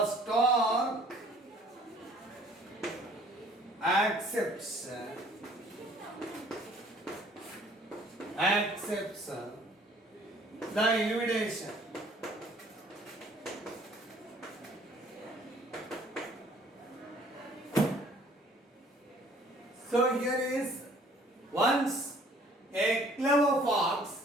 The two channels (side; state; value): both; normal; correlation 0.56